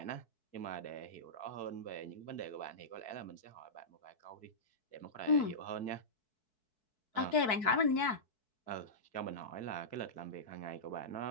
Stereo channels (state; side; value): late; right; 4.6 ms